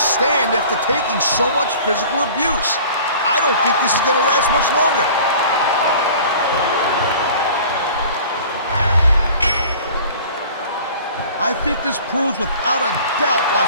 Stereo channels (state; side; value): inverted; both; correlation -0.45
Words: after taking so much physical abuse. I don't think this is going to last much longer. I think this proves without a doubt why